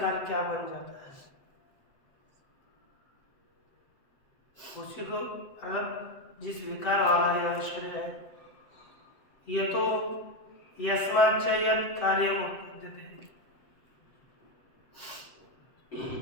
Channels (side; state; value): right; late; 7.8 ms